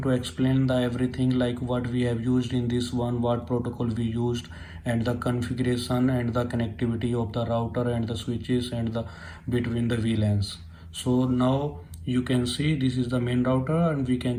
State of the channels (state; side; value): identical; both; correlation 1.00